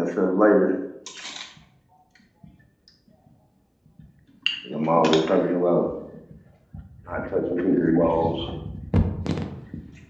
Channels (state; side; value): identical; both; correlation 1.00